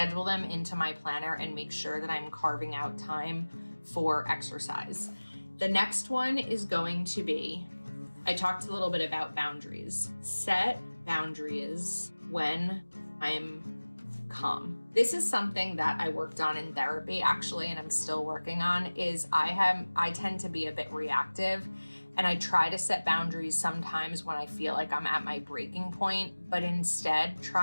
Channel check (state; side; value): inverted; both; correlation -1.00